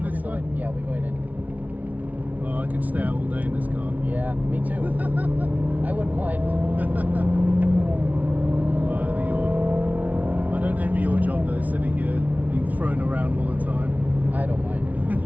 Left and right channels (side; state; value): left; late; 0.072 ms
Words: this Hopefully time? Yeah, we're going in. Oh, I could stay out all day in this car. Yeah, me too. I wouldn't mind. Well, I don't envy your job though, sitting here being thrown around all the time. I don't mind.